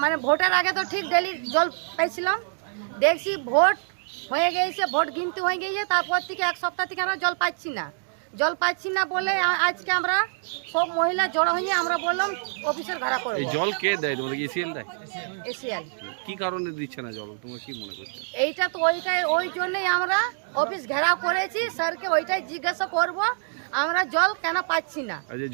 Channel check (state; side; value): silent; left; digital silence